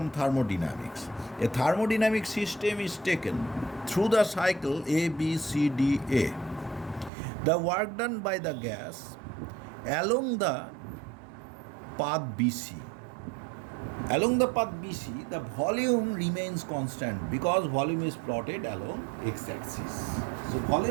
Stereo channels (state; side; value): drops out; left; at 7.1 s